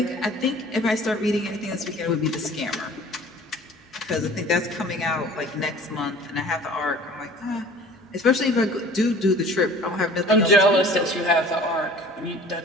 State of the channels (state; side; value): normal; both; correlation 0.47